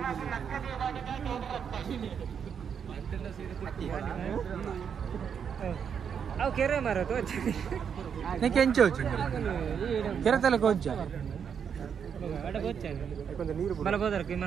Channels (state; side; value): quieter; left; 7.4 dB